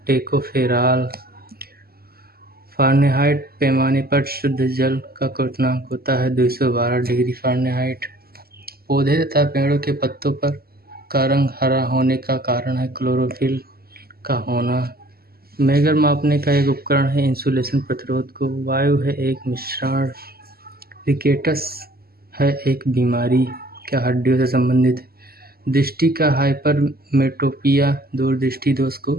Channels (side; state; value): left; late; 0.45 ms